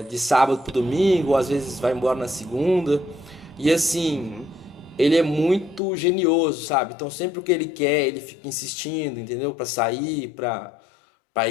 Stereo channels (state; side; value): drops out; right; at 5.8 s